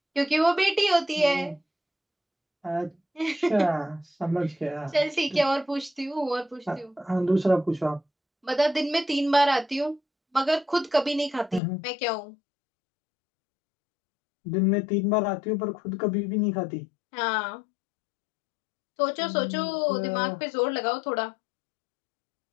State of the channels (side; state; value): right; drops out; at 11.6 s